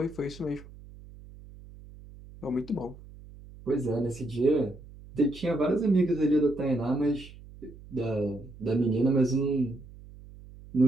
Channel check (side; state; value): right; noise; hum, 19 dB below the sound